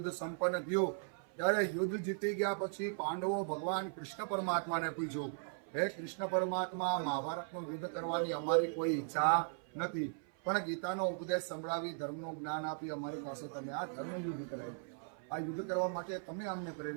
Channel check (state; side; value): silent; left; 52 dB below the other